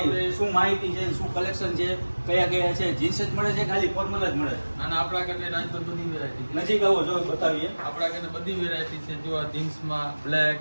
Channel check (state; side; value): inverted; both; correlation -1.00